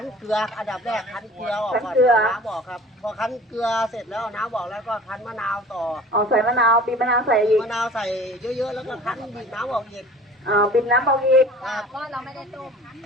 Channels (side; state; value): both; normal; correlation 0.44